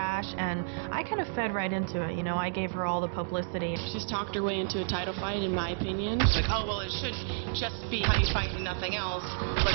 and I kind of fed right into it. You know, I gave her all the publicity. She's talked her way into a title fight, in my opinion. She's like, oh, well, it should just be how you fight and nothing else.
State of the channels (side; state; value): left; silent; digital silence